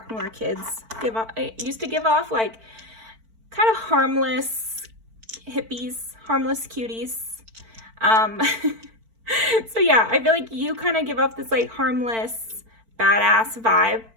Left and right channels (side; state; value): left; late; 4.5 ms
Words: when we were kids used to give off, like kind of harmless hippies, harmless cuties. So yeah, I feel like you kind of give off this like harmless, badass vibe.